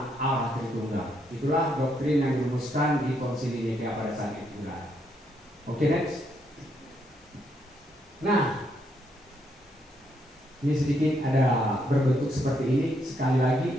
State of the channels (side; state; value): both; normal; correlation 0.75